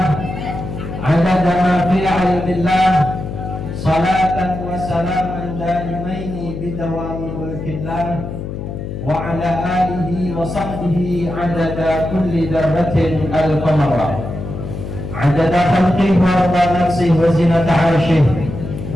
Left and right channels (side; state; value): left; noise; hum, 7 dB below the sound